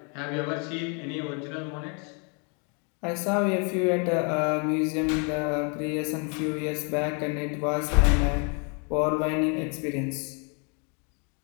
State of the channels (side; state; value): right; quieter; 36.4 dB